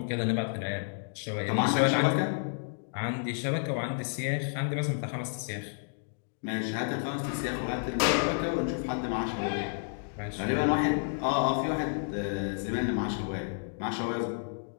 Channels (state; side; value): silent; right; digital silence